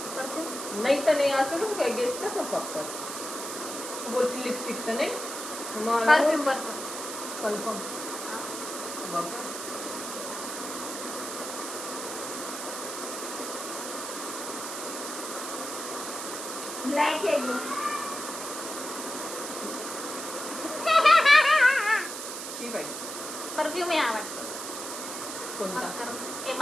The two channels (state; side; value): noise; right; hiss, 7 dB below the sound